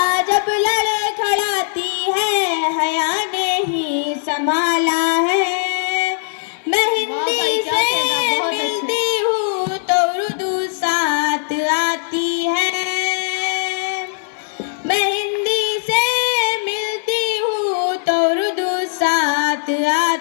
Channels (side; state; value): right; silent; 67 dB below the other